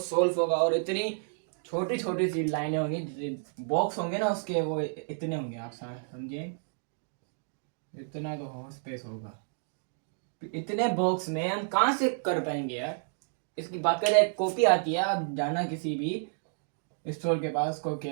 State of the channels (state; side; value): silent; left; digital silence